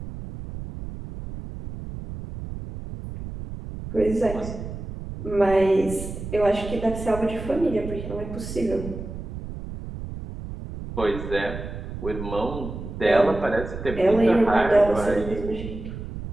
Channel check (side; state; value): right; noise; rumble, 9 dB below the sound